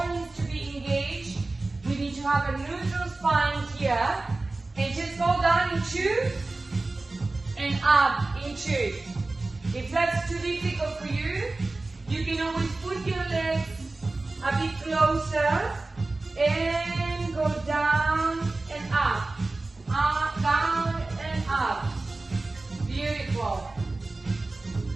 needs to be engaged. We need to have a neutral spine here. And just go down in two and up in two. If that's too difficult for you, you can always put your legs a bit closer and go down and up. Up, down and up. Beautiful.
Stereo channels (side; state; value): left; quieter; 3.2 dB